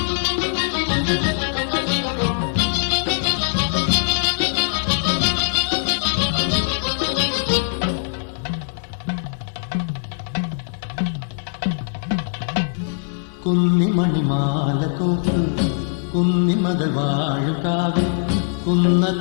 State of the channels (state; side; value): silent; right; digital silence